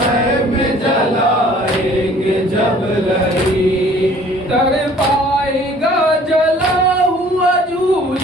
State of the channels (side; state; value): both; normal; correlation 0.53